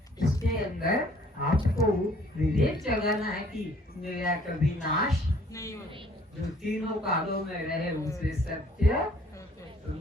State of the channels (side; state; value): both; normal; correlation 0.58